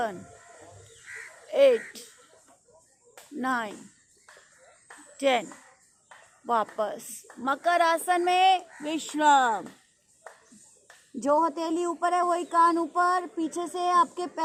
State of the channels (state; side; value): identical; both; correlation 1.00